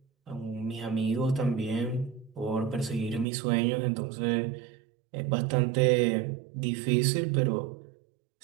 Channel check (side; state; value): left; drops out; at 3.2 s